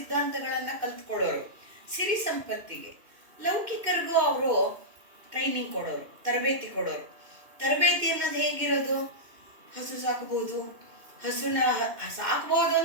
ಕಲ್ತ್ಕೊಳ್ಳೋರು. ಸಿರಿ ಸಂಪತ್ತಿಗೆ ಲೌಕಿಕರಿಗೂ ಅವರು ಟ್ರೈನಿಂಗ್ ಕೊಡೋರು, ತರಬೇತಿ ಕೊಡೋರು. ತರಬೇತಿ ಅನ್ನೋದು ಹೇಗಿರೋದು? ಹಸು ಸಾಕಬಹುದು, ಹಸುನ ಸಾಕಬಹುದು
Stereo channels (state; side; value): late; left; 2.1 ms